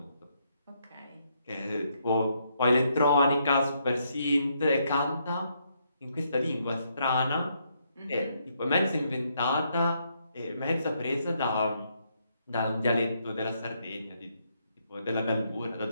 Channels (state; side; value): inverted; both; correlation -0.75